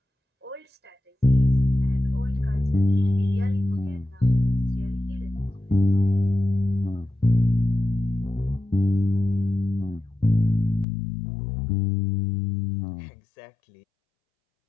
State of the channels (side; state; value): right; drops out; at 10.9 s